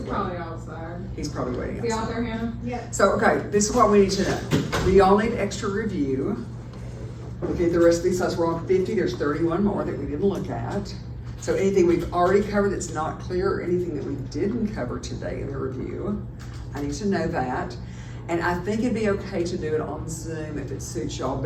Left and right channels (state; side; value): identical; both; correlation 1.00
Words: probably waiting. outside. He's probably waiting Is he out outside. there, Hannah? Yeah. So, okay, this is what we need to know. We all need extra review. Okay, the rest of these slides, we're on 50, there's 31 more that we didn't look at. So anything we've already covered that's not clear, or anything that we didn't cover today in the review, I need to know that. And I think it'd be okay to do it on Zoom if it suits y'all